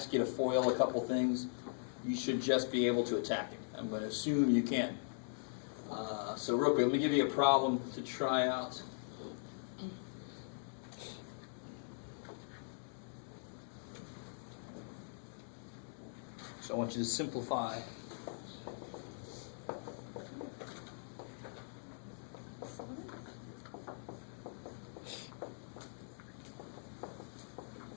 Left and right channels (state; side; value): silent; right; digital silence